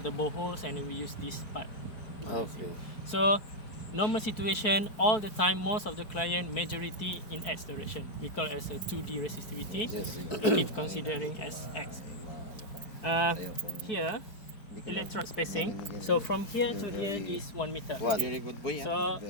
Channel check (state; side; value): late; right; 4.6 ms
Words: the boreholes and we use this part. Okay. So normal situation, all the time, most of the client, majority in X direction. We call it as a 2D resistivity. Yes. It is considering as X. Here, electrode spacing. So from here to here is 1 meter. Very good boy. So